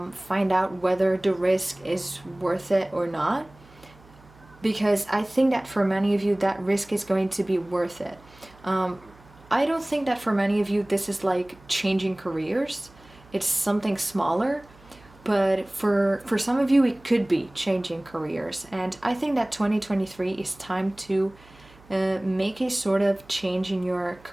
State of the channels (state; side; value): noise; right; hum, 25 dB below the sound